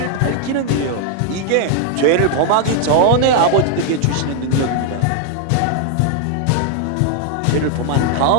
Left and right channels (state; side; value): different; both; correlation 0.00